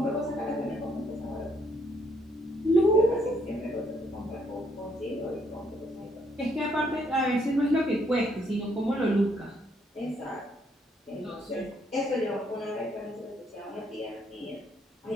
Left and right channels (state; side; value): normal; both; correlation 0.71